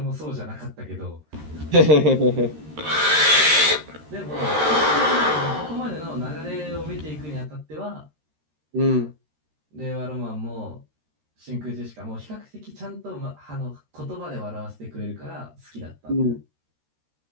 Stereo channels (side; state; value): left; late; 13 ms